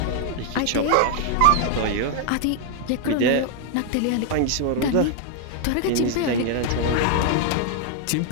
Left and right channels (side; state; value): both; different; correlation 0.00